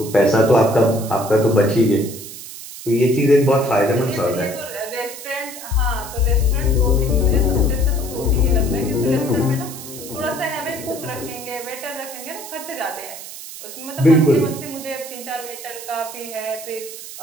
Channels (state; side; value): noise; right; hiss, 12 dB below the sound